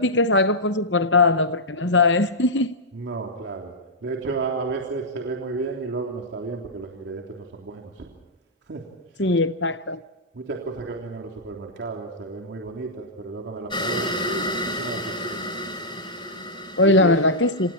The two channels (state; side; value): normal; both; correlation -0.10